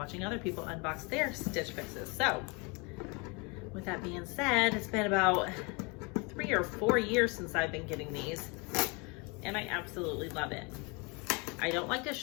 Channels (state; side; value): quieter; right; 30.0 dB